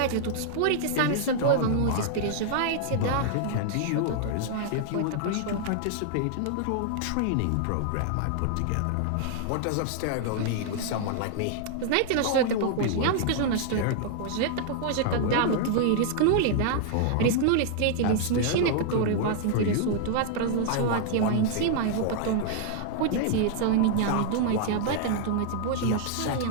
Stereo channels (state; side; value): different; both; correlation -0.01